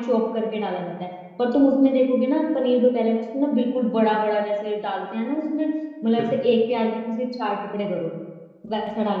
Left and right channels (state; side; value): identical; both; correlation 1.00